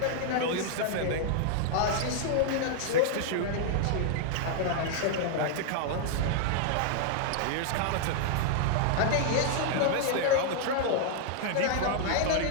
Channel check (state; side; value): different; both; correlation 0.00